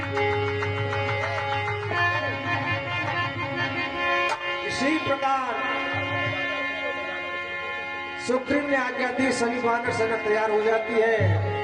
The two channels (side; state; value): both; identical; correlation 1.00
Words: इसी प्रकार सुग्रीव ने आज्ञा दी, सभी वानर सेना तैयार हो जाती है